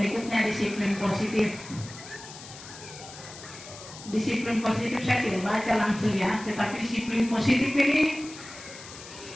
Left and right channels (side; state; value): left; noise; hiss, 15 dB below the sound